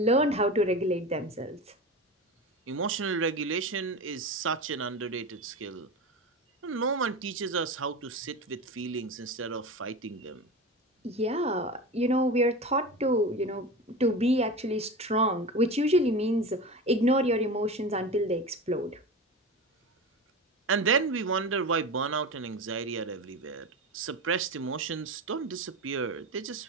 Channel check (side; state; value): both; normal; correlation 0.27